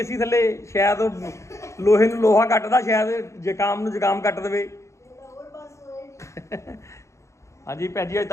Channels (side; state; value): right; late; 0.14 ms